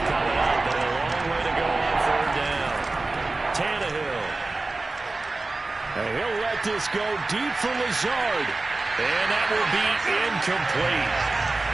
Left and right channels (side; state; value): left; quieter; 3.3 dB